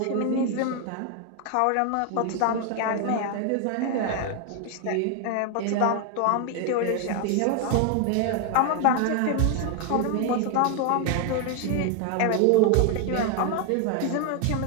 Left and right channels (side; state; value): both; different; correlation 0.01